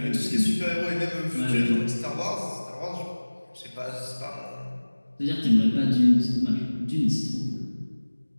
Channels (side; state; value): both; inverted; correlation -1.00